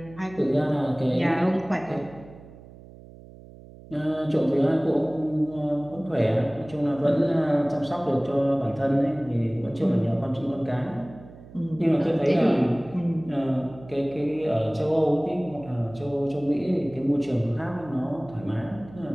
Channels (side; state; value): right; noise; hum, 19 dB below the sound